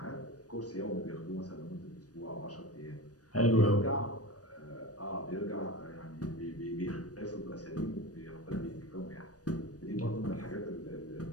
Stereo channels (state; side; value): late; right; 0.68 ms